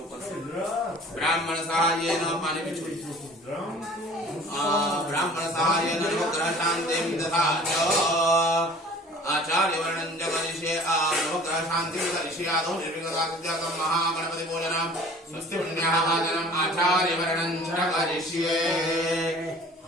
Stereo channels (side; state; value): both; normal; correlation 0.47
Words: से ब्राह्मण सहायेन पानी भी छोड़ी ब्राह्मण सहायेन नवग्रह शान्तिं ददाति आचार्य वर्णन जगनिषे नवग्रह शान्तिं ददाति आदौ निर्विघ्नतां महागणपति पूजनं स्वस्ति पुण्याः भाजनम् आचार्य वर्णन जगनिषे